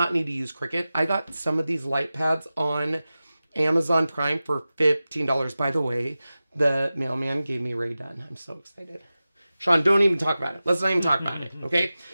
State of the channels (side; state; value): both; inverted; correlation -0.95